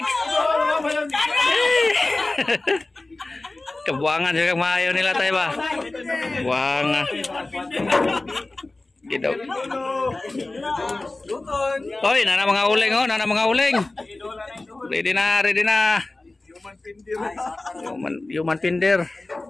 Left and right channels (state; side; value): quieter; right; 3.0 dB